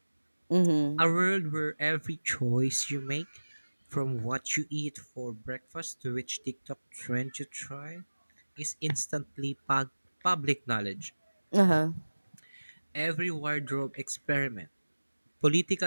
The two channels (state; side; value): inverted; both; correlation -1.00